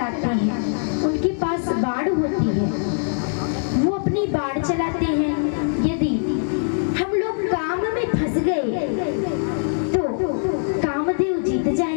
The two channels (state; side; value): silent; right; digital silence